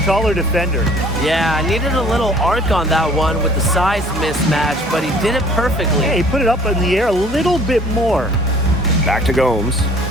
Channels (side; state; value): both; normal; correlation 0.54